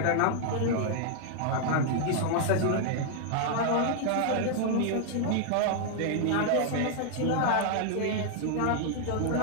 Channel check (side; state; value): both; different; correlation -0.01